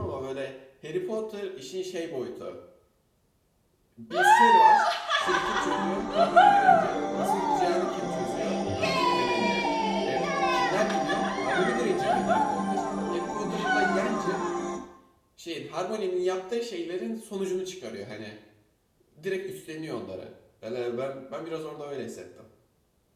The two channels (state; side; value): identical; both; correlation 1.00